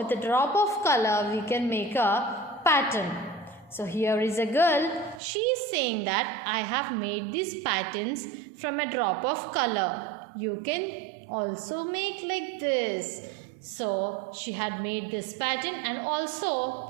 a drop of color, we can make a pattern. So here is a girl. She is saying that I have made these patterns from a drop of color. You can also make like this. So she had made this pattern and also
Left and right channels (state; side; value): drops out; left; at 5.2 s